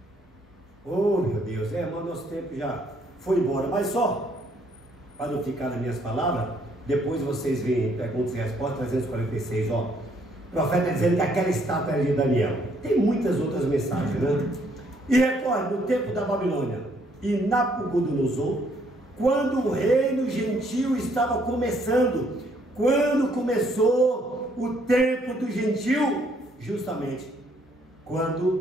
oh meu Deus, mas nosso tempo já foi embora, mas só para não ficar nas minhas palavras, depois vocês veem perguntas e respostas 346, ó, o profeta dizendo que aquela estátua era de Daniel. Tem muitas outras mensagens, né? E recorde, no tempo da Babilônia e Nabucodonosor, quando o reino gentil estava começando, quando começou o tempo do gentil, justamente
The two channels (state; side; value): normal; both; correlation 0.67